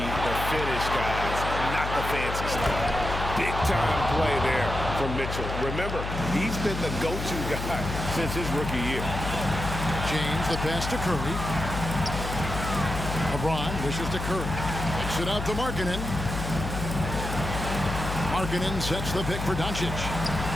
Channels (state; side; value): noise; left; hum, 5 dB below the sound